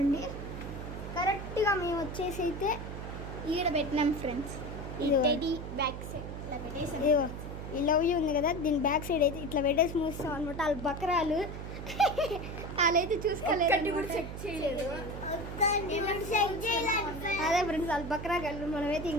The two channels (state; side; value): noise; right; hum, 8 dB below the sound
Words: కరెక్ట్గా మేము వచ్చేసి అయితే ఈడ పెట్టినాం ఫ్రెండ్స్. ఇది బ్యాక్ సైడ్ ఇట్లా పెట్టేసి, ఇదిగో ఈ లవ్ యూ ఉంది కదా, దీని బ్యాక్ సైడ్ అయితే ఇట్లా పెట్టేసి మూస్తాం అనమాట. వాళ్ళు బకరాలు వాళ్ళైతే చూసుకోలేదు, చెక్ చేయలేదు. అదే ఫ్రెండ్స్, వాళ్ళు బకరా కళ్ళు. మనమైతే